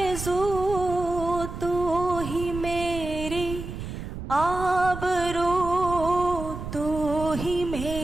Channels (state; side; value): noise; right; rumble, 8 dB below the sound